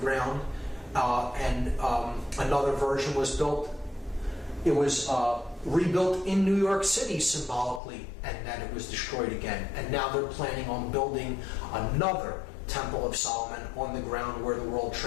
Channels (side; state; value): right; drops out; at 7.8 s